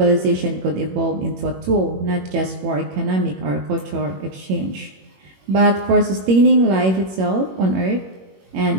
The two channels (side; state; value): left; late; 21 ms